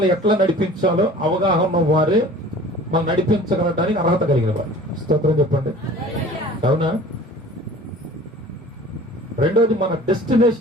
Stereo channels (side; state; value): both; normal; correlation 0.45